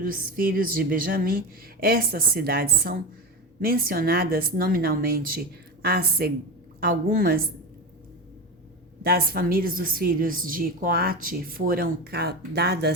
filhos de Benjamim. Estas cidades são mencionadas nominalmente. Algumas das famílias dos filhos de Coate foram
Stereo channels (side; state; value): both; normal; correlation 0.22